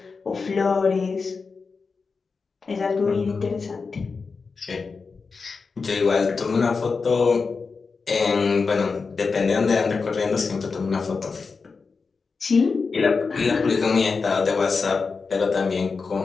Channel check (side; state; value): right; quieter; 4.7 dB